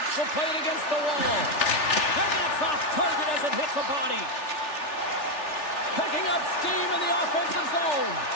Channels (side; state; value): right; late; 3.4 ms